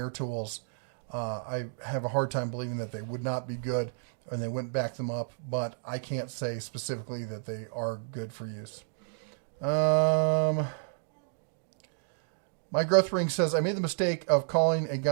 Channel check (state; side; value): silent; left; digital silence